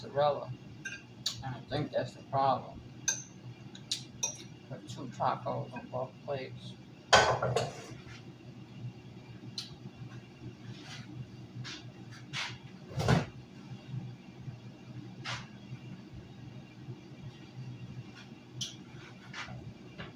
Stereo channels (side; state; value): both; identical; correlation 1.00